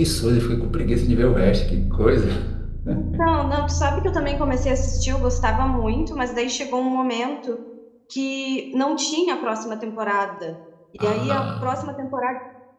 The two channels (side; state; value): both; identical; correlation 1.00